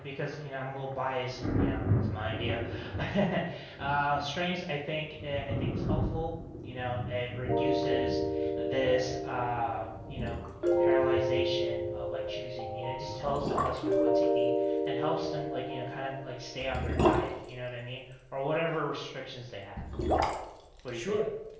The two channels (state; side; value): identical; both; correlation 1.00